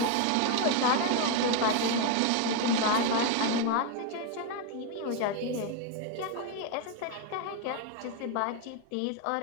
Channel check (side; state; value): both; different; correlation 0.01